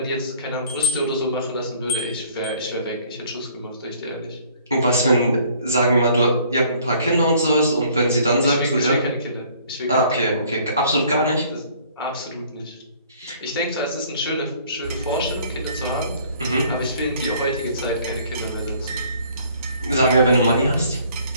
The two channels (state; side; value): inverted; both; correlation -0.58